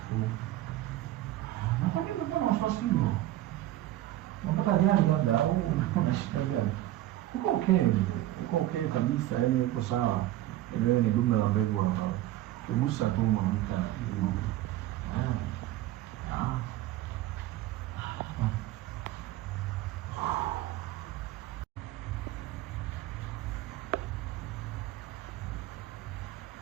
Na kwa nini mbona wasiwasi huo? Unataka gani labda au unashika gani? Uko okay kabisa, yani uko sawa. Ile ni dume la mbegu hapa. Kugusa tu mwanamke na kitu.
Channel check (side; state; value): left; quieter; 14.8 dB